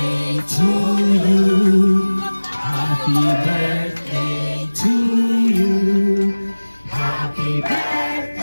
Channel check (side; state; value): both; inverted; correlation -1.00